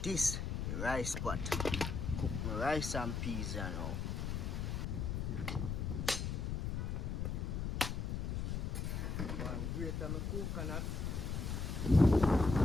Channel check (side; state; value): left; noise; rumble, 1 dB below the sound